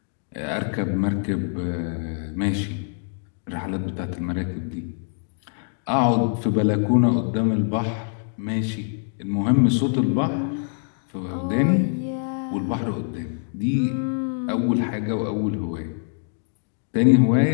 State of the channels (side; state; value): right; silent; digital silence